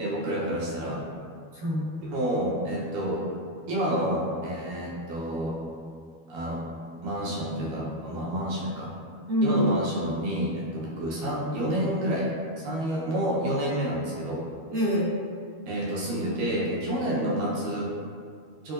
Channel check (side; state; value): left; late; 12 ms